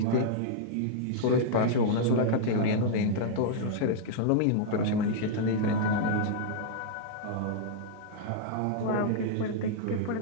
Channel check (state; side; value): different; both; correlation -0.02